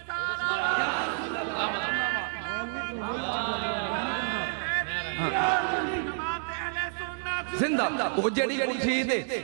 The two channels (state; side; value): silent; left; digital silence